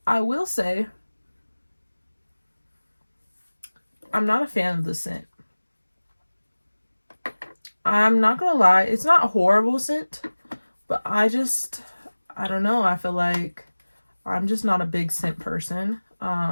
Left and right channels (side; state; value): both; inverted; correlation -1.00